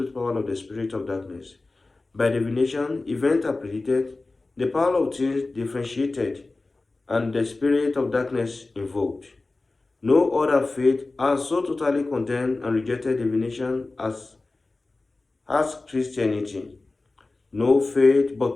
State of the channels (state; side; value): quieter; right; 3.3 dB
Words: power of the spirit of darkness. By divination, events are predicted, the power of things differentiated, and the spirit of darkness invoked. No other faith has so totally condemned and rejected divination as Christianity. No faith